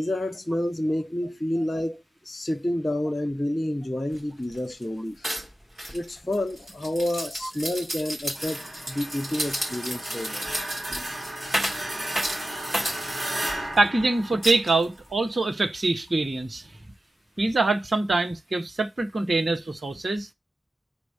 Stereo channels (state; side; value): normal; both; correlation 0.93